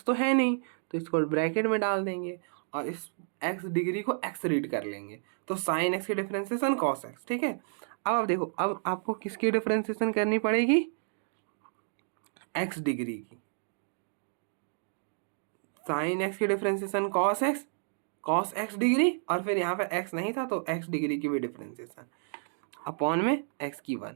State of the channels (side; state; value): left; silent; digital silence